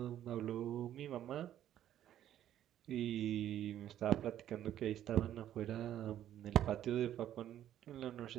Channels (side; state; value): left; quieter; 11.5 dB